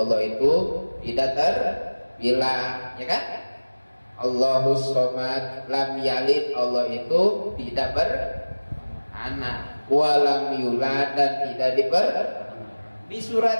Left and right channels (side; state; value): both; inverted; correlation -1.00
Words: itu tidak terbilang, ya kan? Allahus somad, lam yalid, Allah itu tidak beranak, walam yulad, dan tidak Di